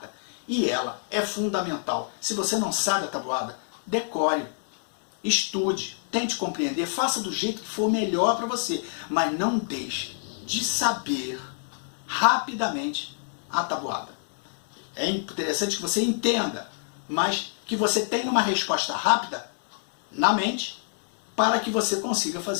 E ela é fundamental. Se você não sabe a tabuada, decore, estude, tente compreender, faça do jeito que for melhor para você. Mas não deixe de saber rapidamente a tabuada. É interessante que você entenda, mas que você tenha uma resposta rápida na mente para que você consiga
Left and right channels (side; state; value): right; silent; digital silence